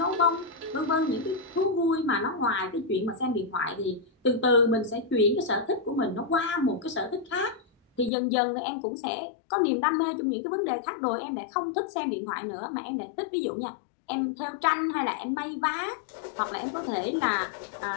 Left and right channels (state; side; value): drops out; right; at 8.1 s